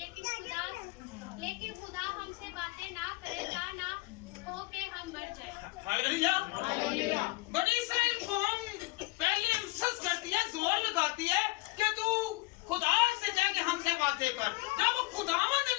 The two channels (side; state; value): right; quieter; 23.8 dB